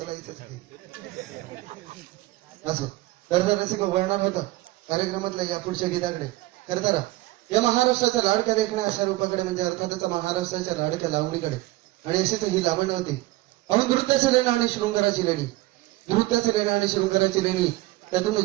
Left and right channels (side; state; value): left; quieter; 18.7 dB